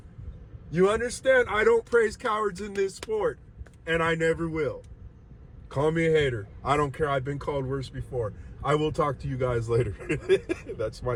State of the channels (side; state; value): both; identical; correlation 1.00